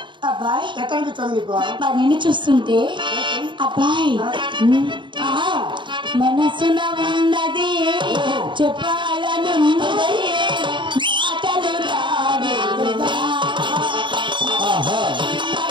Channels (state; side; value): late; left; 0.23 ms